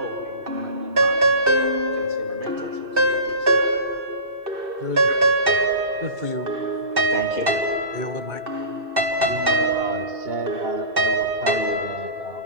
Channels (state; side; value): late; left; 2.6 ms